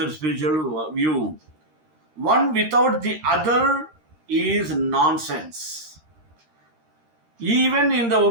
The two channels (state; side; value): late; left; 13 ms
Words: spiritual view. One without the other is nonsense. Even in the